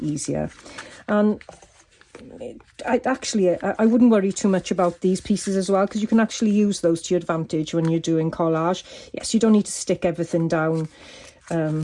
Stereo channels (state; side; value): identical; both; correlation 1.00